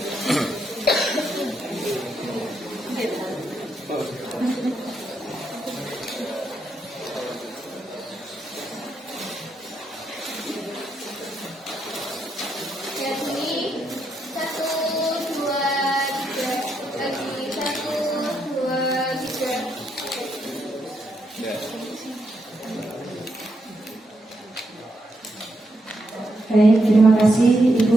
Baik, terima kasih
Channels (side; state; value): both; normal; correlation 0.80